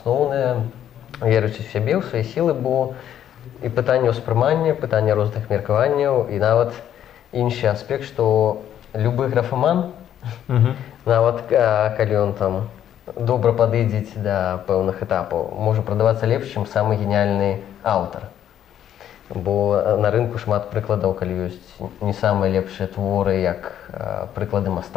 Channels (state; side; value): quieter; right; 10.5 dB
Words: верыць у сябе, у свае сілы, бо і пытанне ўспрымання, пытанне розных меркаванняў, і нават іншы аспект, што любы графаман, нават калі ён там добра падыдзець да пэўных этапаў, можа прадавацца лепш, чым самы геніяльны аўтар. Бо на рынку шмат прыкладаў, калі ёсць не самыя лепшыя творы, як прыклады